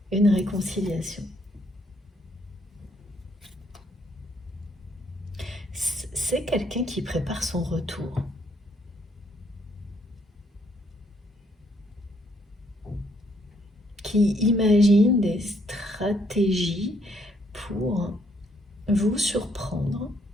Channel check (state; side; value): normal; both; correlation 0.70